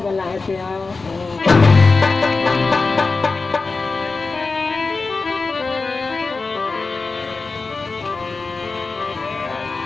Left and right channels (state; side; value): quieter; right; 4.0 dB